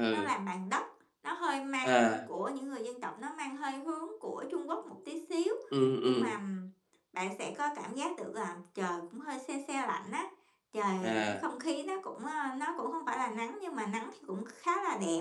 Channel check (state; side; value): identical; both; correlation 1.00